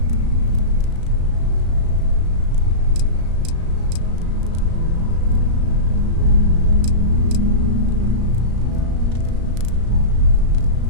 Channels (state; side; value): late; left; 35 ms